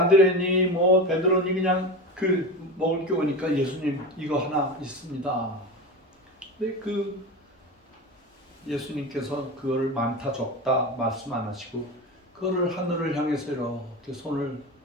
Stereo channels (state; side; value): normal; both; correlation 0.25